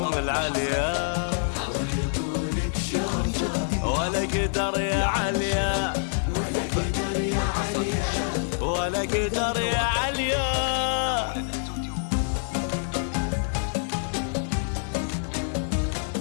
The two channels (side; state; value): right; silent; 61 dB below the other